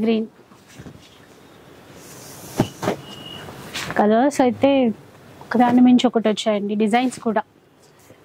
గ్రీన్ కలర్స్ అయితే ఒకదాని మించి ఒకటి వచ్చాయండి. డిజైన్స్ కూడా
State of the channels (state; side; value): identical; both; correlation 1.00